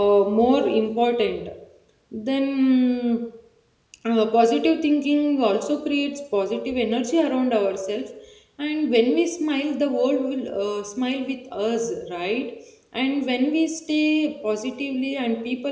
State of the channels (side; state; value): both; identical; correlation 1.00